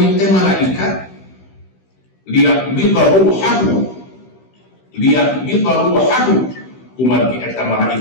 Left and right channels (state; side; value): late; right; 16 ms